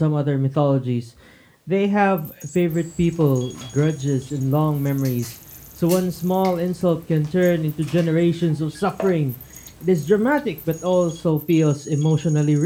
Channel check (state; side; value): identical; both; correlation 1.00